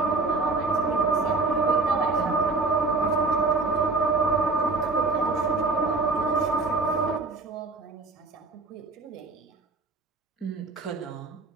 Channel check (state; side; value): quieter; left; 3.7 dB